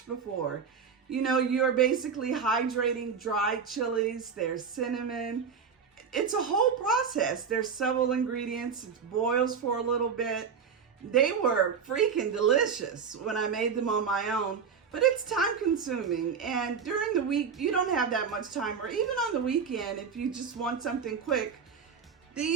before. You know, you're basically hydrating dried chilies, there's cinnamon. It's a whole process. There's several ingredients. It boils for a little bit. They were freaking delicious when I made them on my own, but it's time consuming. And during the week, you don't have that much time, or even on the weekend, if you just want something quick,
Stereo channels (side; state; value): left; quieter; 6.4 dB